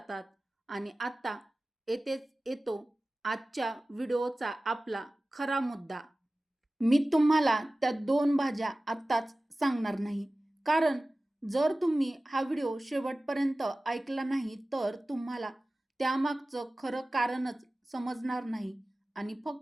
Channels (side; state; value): both; normal; correlation 0.97